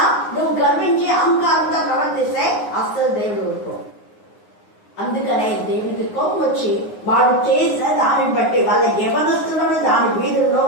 నువ్వు గర్వించి అహంకారంగా ప్రవర్తిస్తే అస్సలు దేవుడు ఊరుకో. అందుకనే దేవుడికి కోపం వచ్చి వాడు చేసిన దానిని బట్టి వాళ్ళ యవనస్తులను దాని వీధుల్లో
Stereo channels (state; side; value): late; right; 9.7 ms